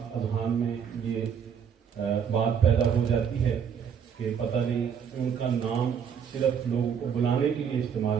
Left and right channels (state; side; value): quieter; left; 7.5 dB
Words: اذہان میں یہ بات پیدا ہو جاتی ہے کہ پتہ نہیں ان کا نام صرف لوگوں کو بلانے کے لیے استعمال